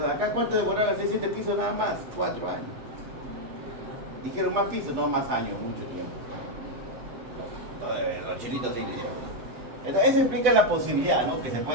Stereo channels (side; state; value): left; late; 8.0 ms